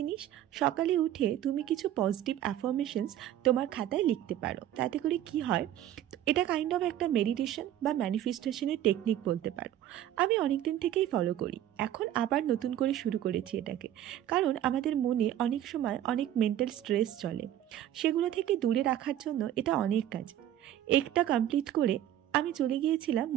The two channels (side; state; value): left; quieter; 11.9 dB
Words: সকালে উঠে তুমি কিছু পজিটিভ অ্যাফার্মেশনস তোমার খাতায় লিখতে পারো। তাতে করে কি হয়, এটা কাইন্ড অফ একটা মেডিটেশন বা ম্যানিফেস্টেশনের টেকনিক বলতে পারো। আমি অনেক দিন থেকেই ফলো করি, এখন আবার নতুন করে শুরু করেছি এটাকে। কারণ আমাদের মনে অনেক সময় অনেক মেন্টাল স্ট্রেস চলে, সেগুলো থেকে দূরে রাখার জন্য এটা অনেক কাজ। একটা কমপ্লিট করে আমি চলে গিয়েছিলাম